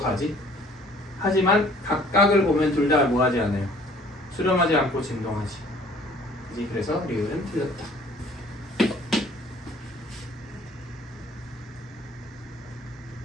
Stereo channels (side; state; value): both; normal; correlation 0.55